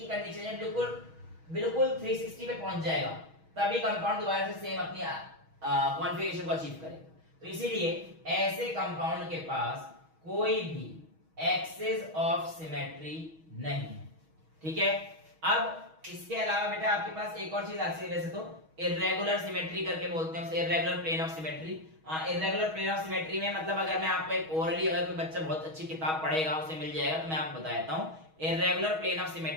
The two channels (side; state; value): left; late; 6.3 ms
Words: कंडीशन है, बिल्कुल 360 पे पहुंच जाएगा, तभी कंपाउंड दोबारा से सेम अपनी कॉन्फ़िगरेशन को अचीव करेगा। तो इसीलिए ऐसे कंपाउंड के पास कोई भी एक्सिस ऑफ सिमेट्री नहीं है, ठीक है। अब इसके अलावा बेटा आपके पास एक और चीज आती है, वैसे तो इर्रेगुलर सिमेट्री करके बोलते हैं उसे, irregular plane of symmetry. Irregular plane of symmetry में मतलब अगर मैं आपको एक ओरली, अगर कोई बच्चा बहुत अच्छी किताब पढ़ेगा उसे मिल जाएगा, तो मैं आपको बता देता हूं। इर्रेगुलर प्लेन ऑफ